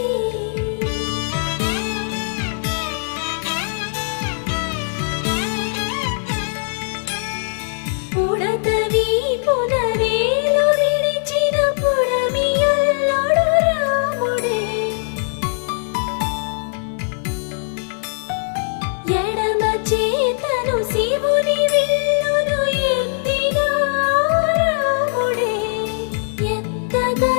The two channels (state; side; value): silent; right; digital silence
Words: ఉడత వీపున వేలు విడిచిన పుడమి అల్లుడు రాముడే, ఎడమ చేతను శివుని విల్లును ఎత్తిన రాముడే,